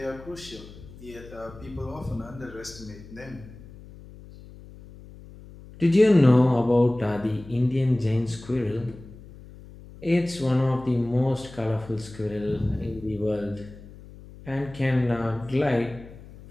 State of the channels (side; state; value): left; noise; hum, 18 dB below the sound